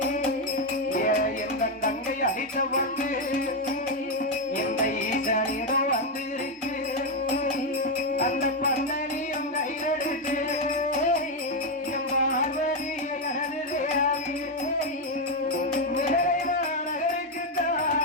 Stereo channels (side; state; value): both; normal; correlation 0.05